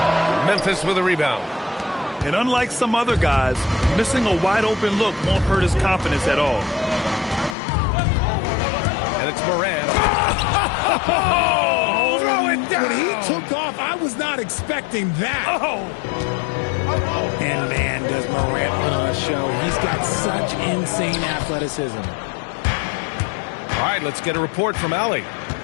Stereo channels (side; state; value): right; drops out; at 7.6 s